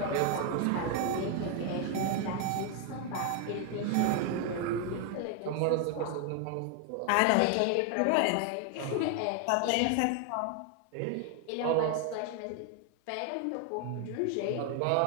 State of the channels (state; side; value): different; both; correlation 0.01